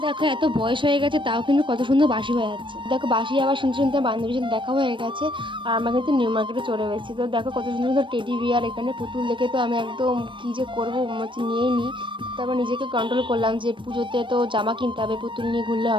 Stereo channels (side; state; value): left; late; 0.24 ms